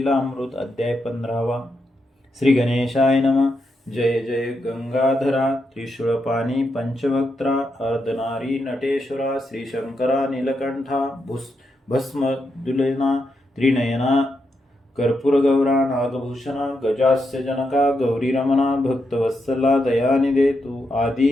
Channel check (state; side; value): normal; both; correlation 0.83